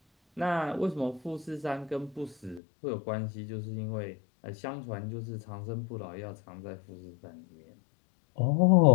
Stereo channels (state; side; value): drops out; right; at 2.6 s